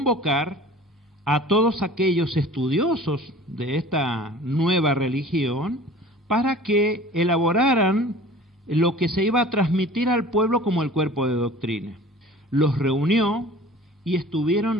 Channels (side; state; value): both; normal; correlation 0.44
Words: a todos aquellos estudiosos de esta nueva religión para que elaboraran lo que se iba a transmitir al pueblo como el cuerpo de doctrina. Los reunió y